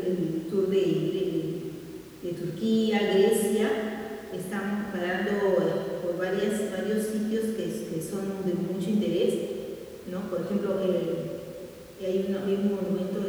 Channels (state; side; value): identical; both; correlation 1.00